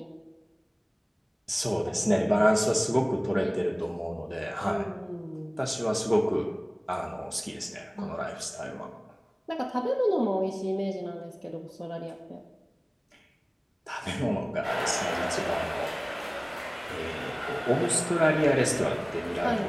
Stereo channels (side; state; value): both; identical; correlation 1.00